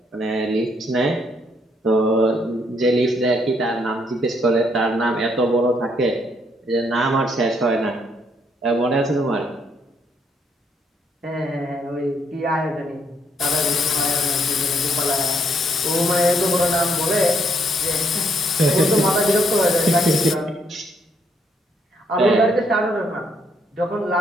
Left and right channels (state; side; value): normal; both; correlation 0.71